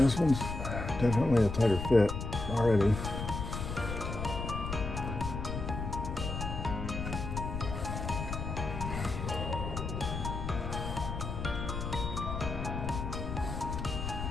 one's definitely a tighter fit already.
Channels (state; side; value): noise; left; rumble, 4 dB below the sound